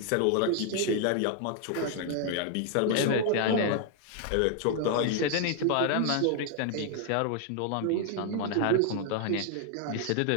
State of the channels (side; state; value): both; different; correlation 0.00